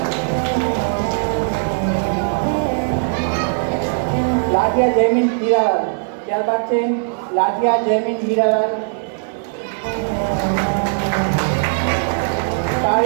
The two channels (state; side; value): silent; left; digital silence